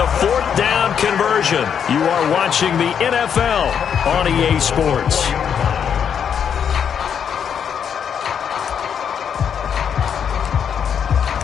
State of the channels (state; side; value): quieter; right; 7.8 dB